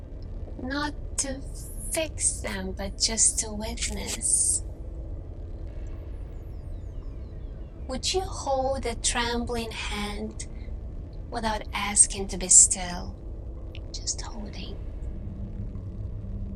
Not to fix them, but just to witness. Would you hold a trembling hand without asking to be still? Just holding.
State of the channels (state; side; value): identical; both; correlation 1.00